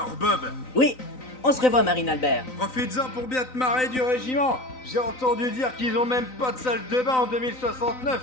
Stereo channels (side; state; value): right; late; 3.9 ms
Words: Bob. Oui, on se revoit, Marine Albert. Profites-en pour bien te marrer du régiment. J'ai entendu dire qu'ils ont même pas de salle de bain en 2069,